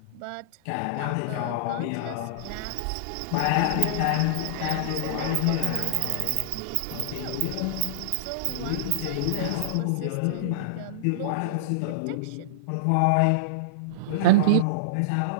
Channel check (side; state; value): both; different; correlation -0.03